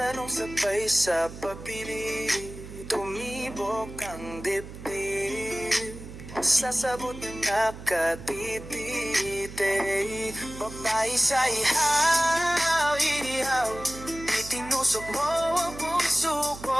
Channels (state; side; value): noise; right; hum, 13 dB below the sound